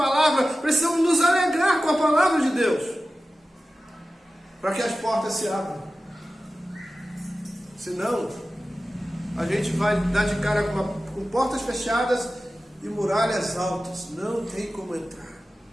precisamos nos alegrar com a palavra de Deus, para que as portas se abram. Senão, a gente vai dar de cara com portas fechadas e muralhas altas, não tem como entrar.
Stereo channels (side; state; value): both; normal; correlation 0.95